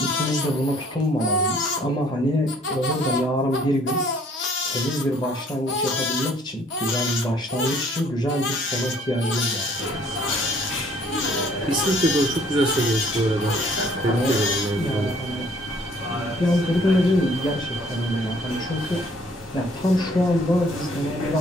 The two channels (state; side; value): normal; both; correlation 0.59